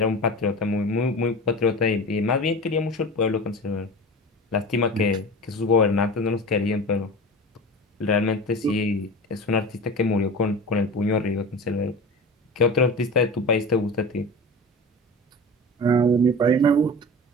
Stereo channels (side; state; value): both; normal; correlation 0.33